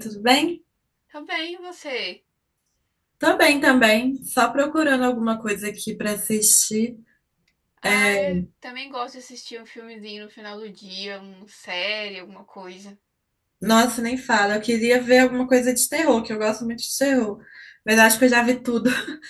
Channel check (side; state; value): both; identical; correlation 1.00